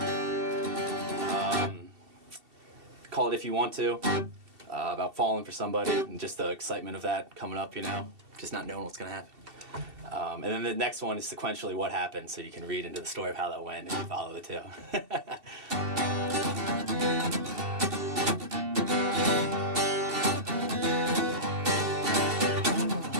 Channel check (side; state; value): left; late; 2.7 ms